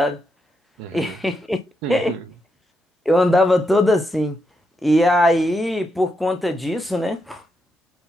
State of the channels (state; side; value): normal; both; correlation 0.83